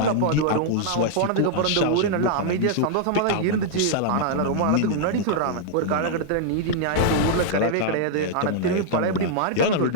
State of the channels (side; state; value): both; different; correlation -0.01